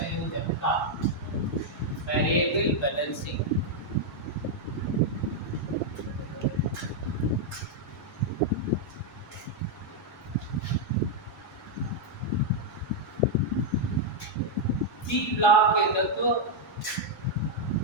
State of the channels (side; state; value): both; normal; correlation -0.01